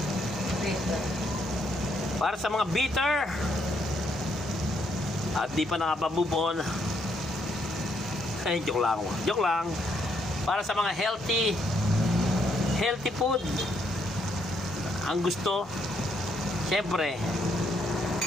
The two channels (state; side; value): normal; both; correlation 0.73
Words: Para sa mga bitter at di pa nakapamove on. Ay, joke lang. Para sa mga healthy food, ang gusto, syempre,